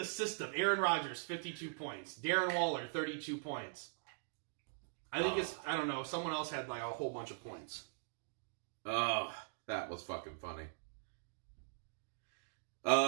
system. Aaron Rodgers, 52 points. Darren Waller, 32 points. I think I don't know, someone else had like a whole bunch of points. Oh, that was fucking funny.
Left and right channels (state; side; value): silent; left; digital silence